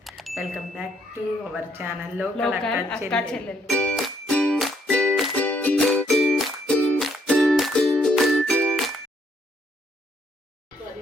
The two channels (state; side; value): normal; both; correlation 0.70